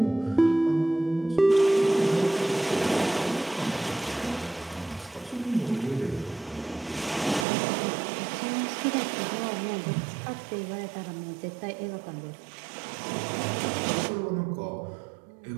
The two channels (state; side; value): drops out; left; at 7.5 s